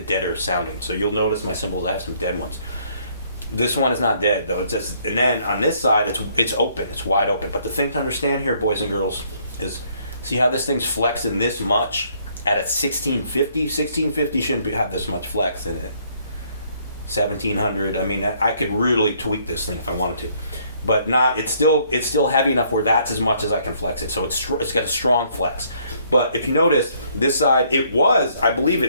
sounding. So you'll notice my cymbals, I have some dead ones. This one is not dead though. It's just, and then on this side, it's open. It's wide open. But the thing to understand here, boys and girls, is see how this thing's flexing this much at a 1650? 1650 shouldn't have this much flex in it. 1700. I mean, I could really tweak this thing if I wanted to. But not. It's still heavy enough where that's as much as I can flex it. So it's got a strong flex. But if you notice, this side, I believe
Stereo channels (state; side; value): inverted; both; correlation -0.65